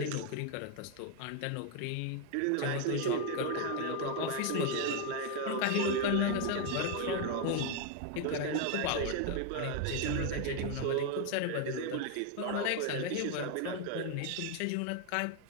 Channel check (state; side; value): different; both; correlation 0.01